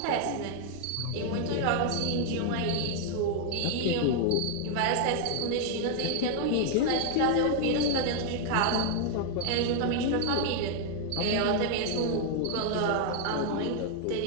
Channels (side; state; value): both; different; correlation 0.00